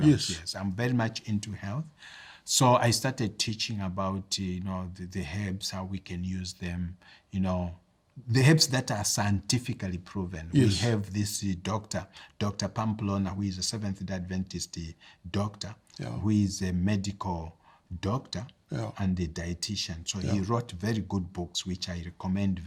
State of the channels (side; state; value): both; identical; correlation 1.00